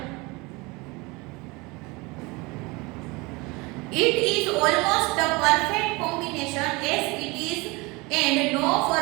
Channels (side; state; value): left; quieter; 25.1 dB